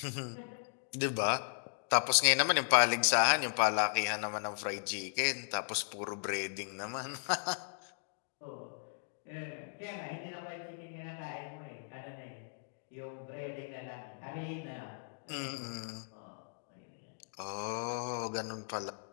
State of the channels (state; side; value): silent; right; digital silence